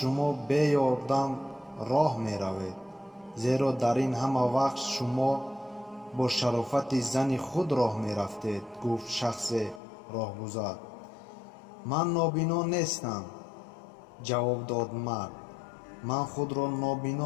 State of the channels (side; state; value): right; drops out; at 9.8 s